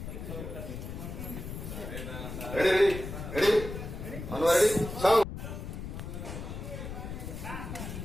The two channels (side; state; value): left; noise; rumble, 7 dB below the sound